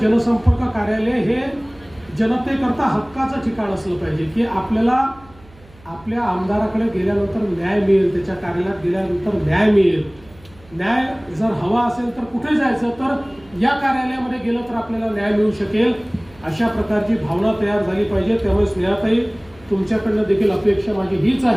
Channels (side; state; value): right; noise; hum, 25 dB below the sound